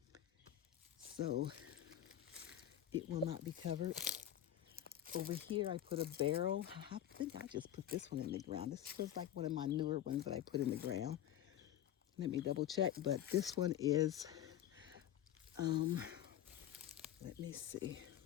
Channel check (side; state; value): right; quieter; 11.6 dB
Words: So it will not be covered. Over here, I put a barrel. I think I just put this one in the ground. This feels like one of my newer ones that I put in the ground. Let me double check, but this one is, let me see,